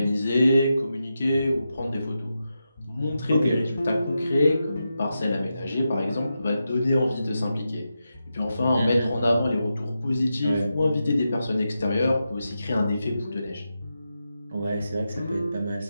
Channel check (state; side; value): inverted; both; correlation -0.88